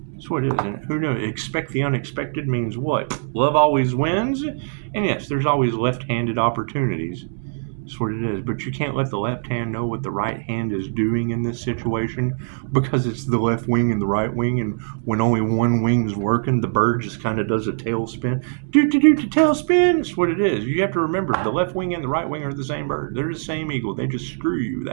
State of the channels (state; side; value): silent; left; 64 dB below the other